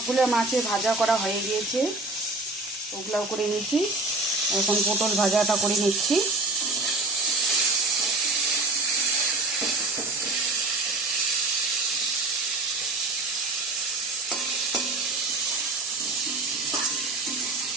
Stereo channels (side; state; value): left; quieter; 3.1 dB